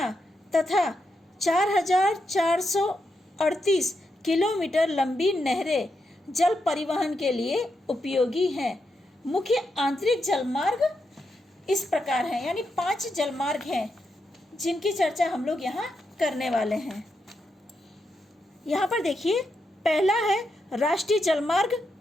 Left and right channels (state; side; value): normal; both; correlation 0.84